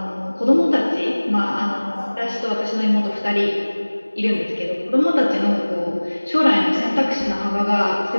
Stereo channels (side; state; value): both; inverted; correlation -1.00